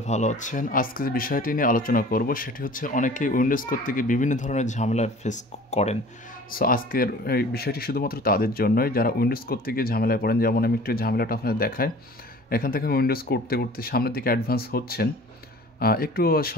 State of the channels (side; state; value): both; normal; correlation 0.45